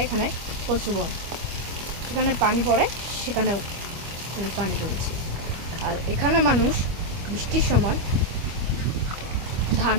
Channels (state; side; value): late; left; 25 ms